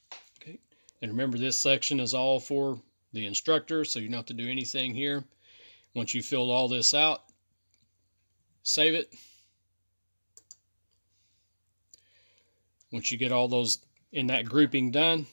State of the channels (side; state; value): both; inverted; correlation -1.00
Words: Okay, and remember this section is all for the instructor, so you don't have to do anything here. Once you filled all this out, save it. Once you get all those in that grouping done,